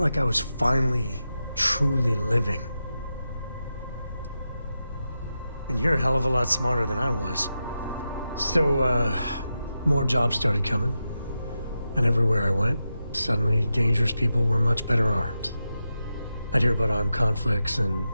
I was finally, truly living. And you're a hell of a lot smarter than I was. So, more jobs started coming. And everywhere I went, suddenly dangerous people were much better armed. I'd hear about armed conflicts and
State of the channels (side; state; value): both; inverted; correlation -0.90